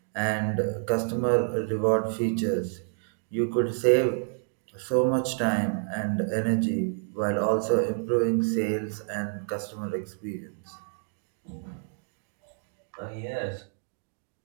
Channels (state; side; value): silent; left; 59 dB below the other